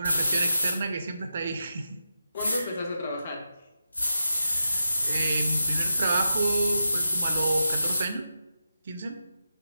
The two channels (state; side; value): inverted; both; correlation -0.87